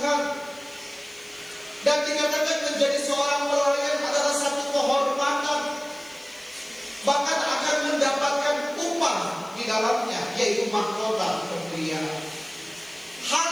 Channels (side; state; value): left; noise; hiss, 24 dB below the sound